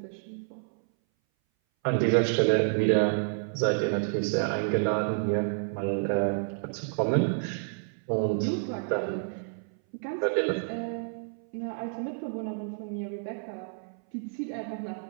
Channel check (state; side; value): silent; left; 58 dB below the other